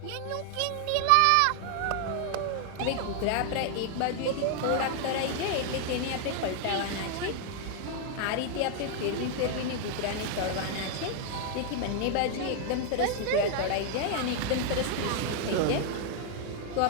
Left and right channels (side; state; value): both; different; correlation 0.00